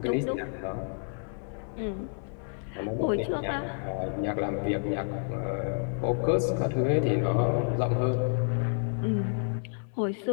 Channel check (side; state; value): right; silent; digital silence